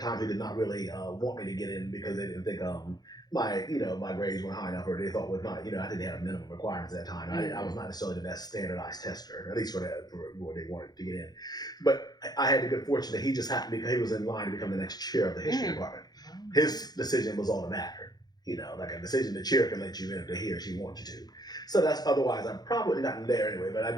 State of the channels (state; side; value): late; right; 0.19 ms